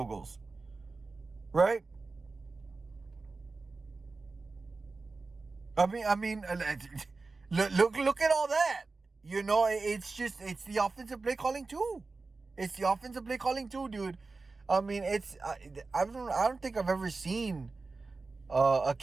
goals. Right? I mean, look at all that. You know, it's the offensive play calling too. It's the offensive play calling too, dude. I mean, I don't think I've ever seen a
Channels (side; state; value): left; quieter; 3.8 dB